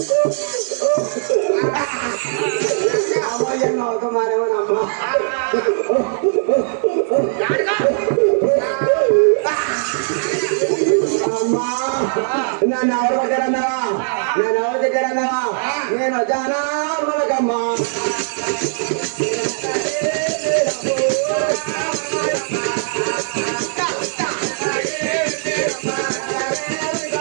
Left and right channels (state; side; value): silent; left; digital silence